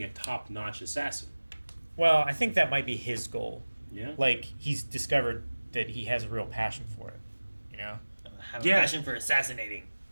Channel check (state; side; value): inverted; both; correlation -1.00